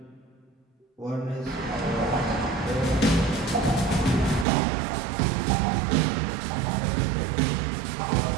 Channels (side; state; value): left; drops out; at 4.5 s